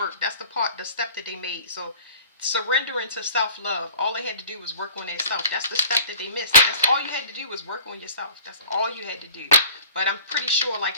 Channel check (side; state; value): both; inverted; correlation -0.49